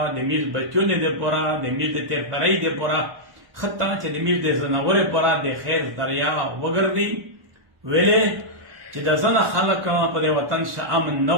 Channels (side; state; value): left; late; 1.2 ms